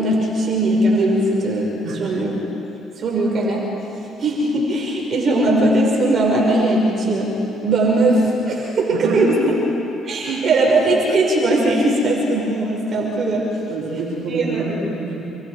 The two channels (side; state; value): both; normal; correlation 0.67